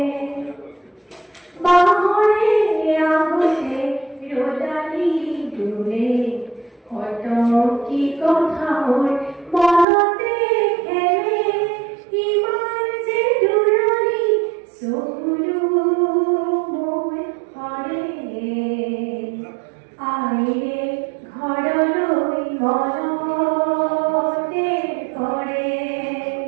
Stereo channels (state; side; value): drops out; left; at 9.9 s